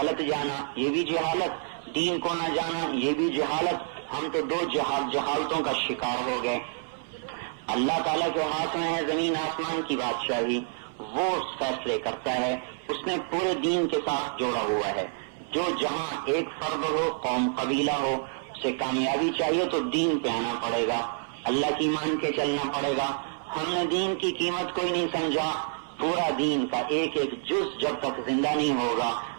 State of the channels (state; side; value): silent; left; 55 dB below the other